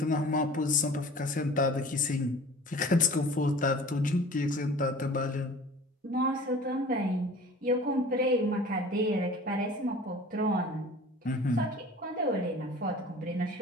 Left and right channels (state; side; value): normal; both; correlation 0.43